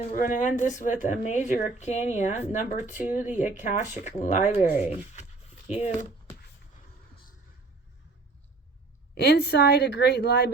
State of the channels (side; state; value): left; quieter; 3.6 dB